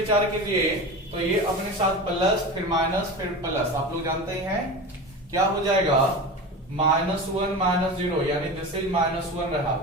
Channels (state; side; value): normal; both; correlation 0.28